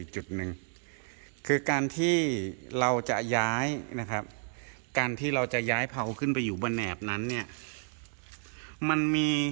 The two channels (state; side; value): silent; left; 57 dB below the other